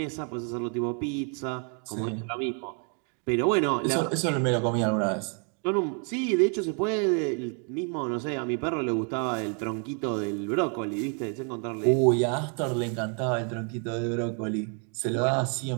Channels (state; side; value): quieter; left; 39.8 dB